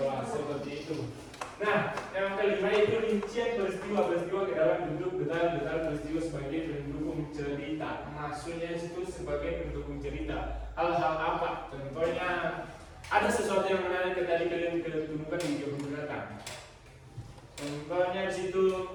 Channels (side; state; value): both; identical; correlation 1.00